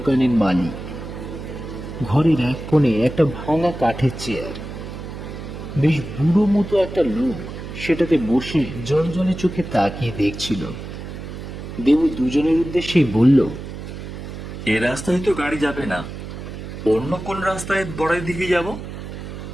মালিক। ঘরের এক কোণে একটা ভাঙা কাঠের চেয়ার। বেশ বুড়ো মতো একটা লোক সেটাতে বসে জল জলে চোখে তাকিয়ে দেখছিল। দেবু দুজনের উদ্দেশ্যেই বলল, এ রাস্তায় তো গাড়ি যাবে না, অন্য কোন রাস্তায় বড়াই দিকে যাব?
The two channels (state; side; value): noise; right; hum, 9 dB below the sound